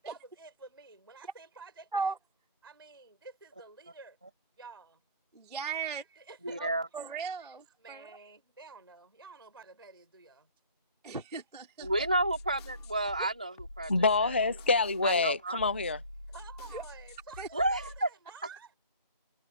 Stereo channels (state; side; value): inverted; both; correlation -0.47